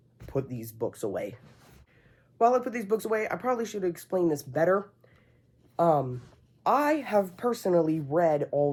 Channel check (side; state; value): both; identical; correlation 1.00